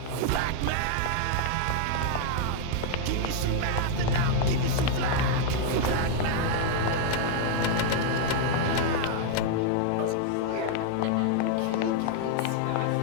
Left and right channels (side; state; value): both; different; correlation 0.00